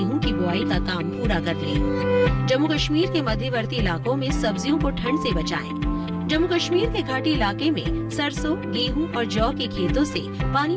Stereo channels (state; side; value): identical; both; correlation 1.00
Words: की बुआई का काम पूरा कर लें। जम्मू कश्मीर के मध्यवर्ती इलाकों में सब्जियों को ठंड से बचाएं। जम्मू कश्मीर के घाटी इलाके में सरसों, गेहूं और जौ के खेतों से